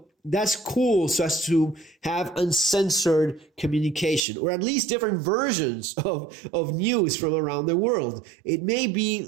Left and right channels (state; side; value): drops out; left; at 4.2 s